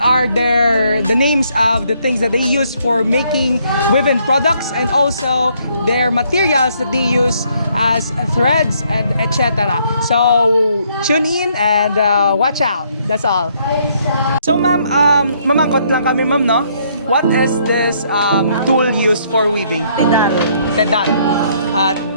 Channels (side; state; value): both; inverted; correlation -0.68